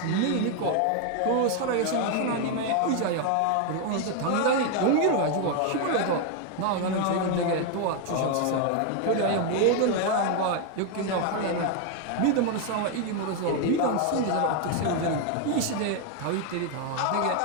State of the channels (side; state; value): both; different; correlation 0.01